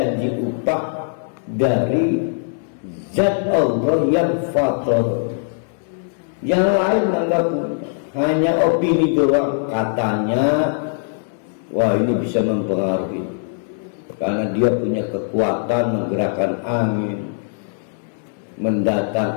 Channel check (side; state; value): right; silent; 64 dB below the other